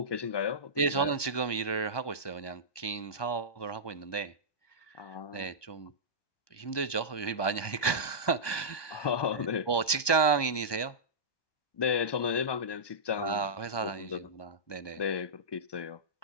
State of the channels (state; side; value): late; right; 1.2 ms